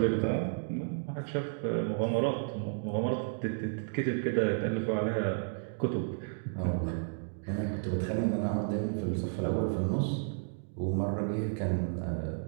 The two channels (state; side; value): silent; left; digital silence